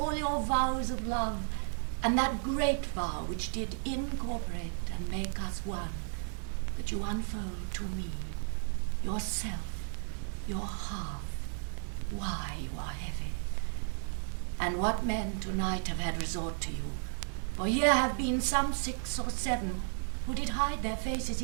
your vows of love, and that great vow which did incorporate and make us one, that you unfold to me, yourself, your half, why you are heavy, and what men tonight have had resort to you, for here have been some 6 or 7 who did hide their faces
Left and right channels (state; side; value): silent; left; 55 dB below the other